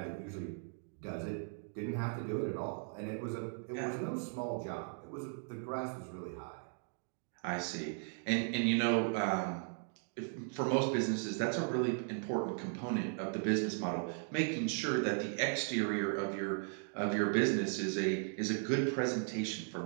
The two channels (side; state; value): left; silent; 53 dB below the other